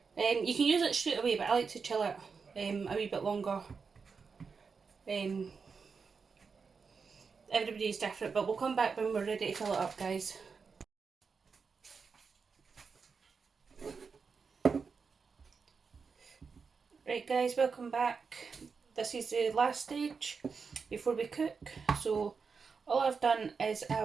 You can use it straight away, but I like to chill it a wee bit longer. Everybody's different, but we'll come back when we're ready to fill it up, guys. Right guys, welcome back. This is the last stage before we cook. So all I've done is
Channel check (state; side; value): quieter; left; 5.3 dB